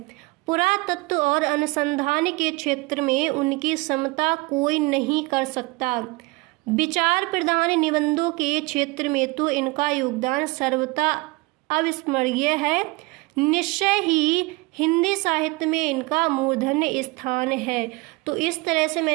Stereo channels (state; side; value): quieter; left; 24.3 dB